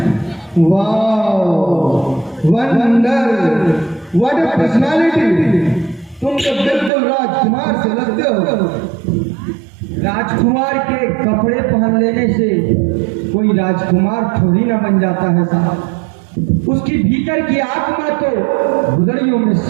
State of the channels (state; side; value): drops out; left; at 6.9 s